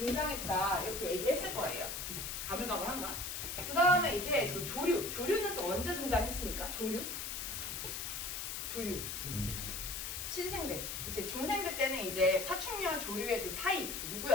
이렇게 얘기했을 거예요. 가물가물한가? 그 다음에 이제 또 조류는 또 언제 등장했습니까? 조류? 신생대. 그치? 중생대 때는 이제 파충류와 조류의 그 사이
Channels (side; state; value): left; noise; hiss, 4 dB below the sound